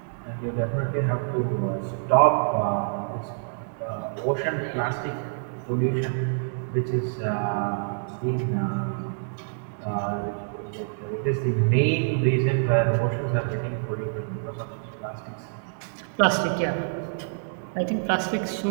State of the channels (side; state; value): left; silent; digital silence